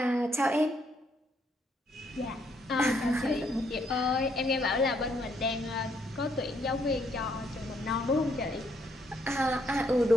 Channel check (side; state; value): both; normal; correlation 0.72